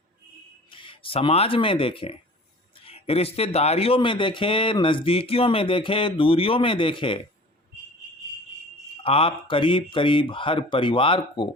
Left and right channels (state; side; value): normal; both; correlation 0.43